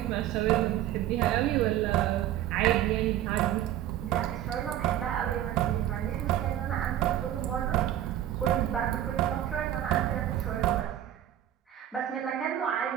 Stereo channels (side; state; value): left; quieter; 12.2 dB